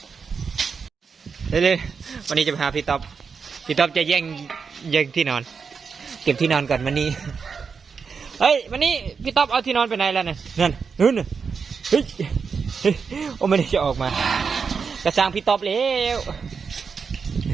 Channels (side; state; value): left; quieter; 5.6 dB